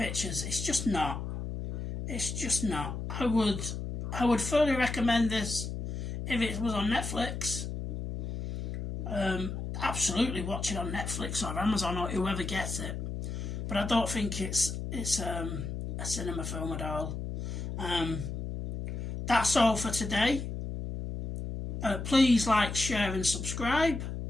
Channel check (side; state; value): left; noise; hum, 5 dB below the sound